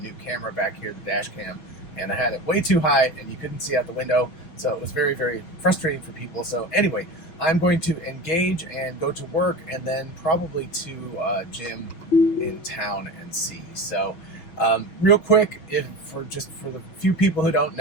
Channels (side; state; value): right; late; 6.3 ms